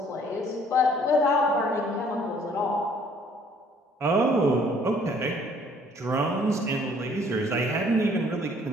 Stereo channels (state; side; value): normal; both; correlation 0.59